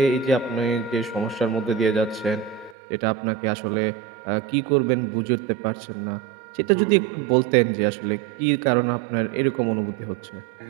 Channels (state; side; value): drops out; left; at 2.8 s